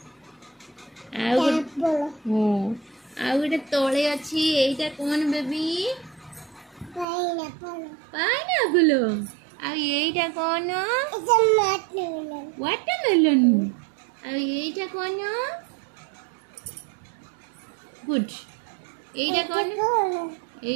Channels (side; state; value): left; drops out; at 7.1 s